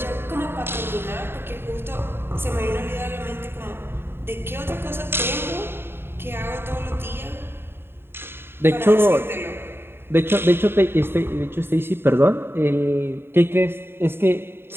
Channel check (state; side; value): late; left; 0.11 ms